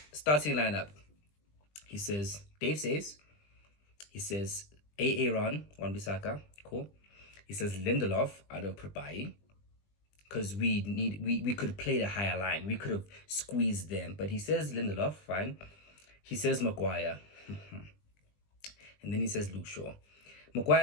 starting lineup. Dave says, Aaron Wan-Bissaka, cool. He says Lindelof out of Prabai, because we could have played a higher line. We could have squeezed them, but he says Lindelof, fine. He says Maguire, and then he says Luke Shaw. Maguire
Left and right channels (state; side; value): late; right; 20 ms